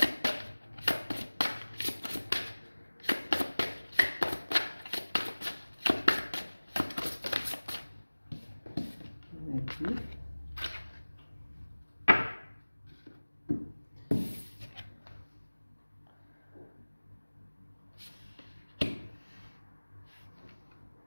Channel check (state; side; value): inverted; both; correlation -1.00